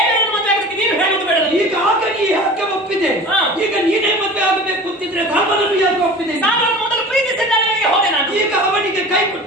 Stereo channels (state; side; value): normal; both; correlation 0.39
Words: ಮದುವೆ ಆಗೋದಕ್ಕೆ ನೀನು ಹೇಳುವುದು ಬೇಡ. ಈಗ ಆಗ ನೀ ಯಾಕೆ ಒಪ್ಪಿದೆ? ಈಗ ನೀನೇ ಮದುವೆ ಆಗಬೇಕು ಅಂತಿದ್ರೆ ಧರ್ಮನನ್ನು ಯಾಕೆ ಒಪ್ಪಿದೆ? ನಾನು ಮೊದಲು ಪ್ರೀತಿಸಿದ್ದವನಿಗೆ ಹೋದೆ ನಾನು. ಈಗ ಅವನಿಗೆ ಕೈ